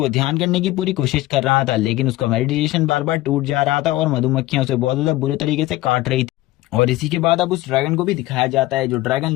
ध्यान करने की पूरी कोशिश कर रहा था, लेकिन उसका मेडिटेशन बार बार टूट जा रहा था और मधुमक्खियां उसे बहुत ज्यादा बुरे तरीके से काट रही थी। और इसी के बाद अब उस ड्रैगन को भी दिखाया जाता है, जो ड्रैगन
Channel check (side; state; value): right; quieter; 17.5 dB